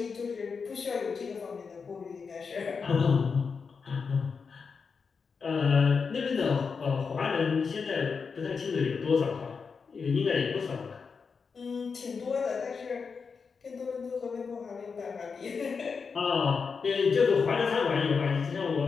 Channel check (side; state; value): right; quieter; 5.4 dB